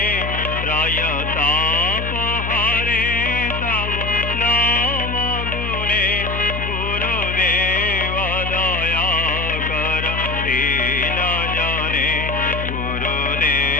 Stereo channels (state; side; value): noise; left; hum, 4 dB below the sound